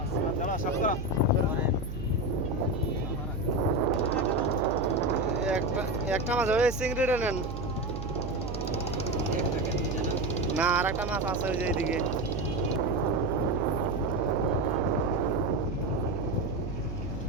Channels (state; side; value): noise; right; hum, 7 dB below the sound